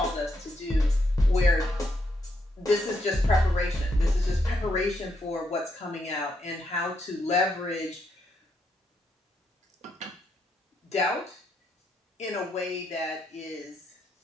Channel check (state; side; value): normal; both; correlation 0.79